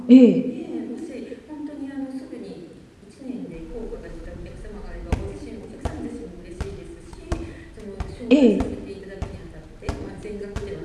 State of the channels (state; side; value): identical; both; correlation 1.00